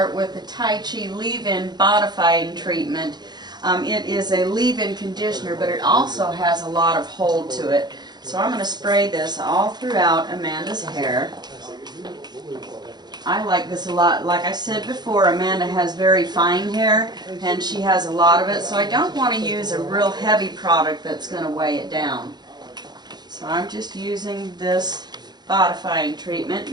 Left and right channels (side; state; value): left; late; 0.21 ms